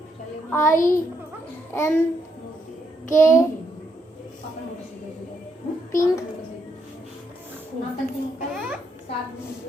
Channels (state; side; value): normal; both; correlation 0.77